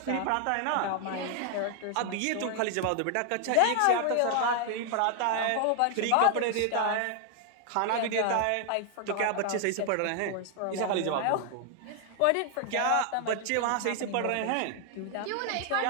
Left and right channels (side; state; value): both; different; correlation 0.00